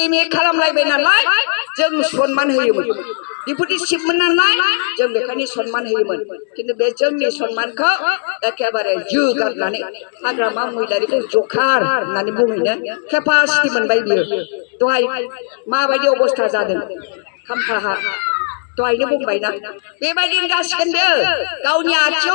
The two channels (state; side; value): silent; right; digital silence